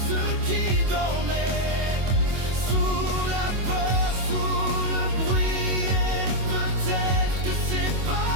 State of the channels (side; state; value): left; late; 24 ms